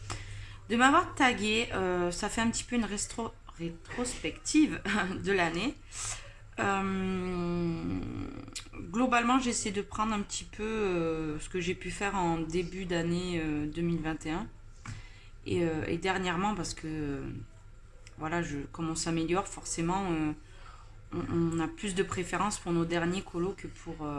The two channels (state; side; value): identical; both; correlation 1.00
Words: tagué, ça fait un petit peu une rétrospective de l'année. Globalement, j'essaie de prendre un petit peu ce que j'ai pu faire en début d'année 2021 et dernièrement parce que voilà, comme on s'améliore, forcément, on a plus de préférence pour nos derniers colos que